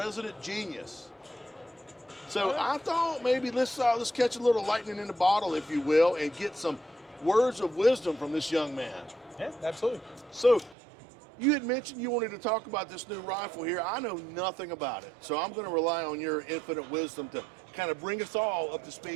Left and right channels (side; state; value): left; drops out; at 10.8 s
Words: genius. So I thought maybe let's catch a little lightning in the bottle, if you will, and get some words of wisdom from this young man. Yeah, absolutely. So you had mentioned you wanted to talk about this new rifle here. I know nothing about it, so I'm going to rely on your infinite wisdom to kind of bring us all up to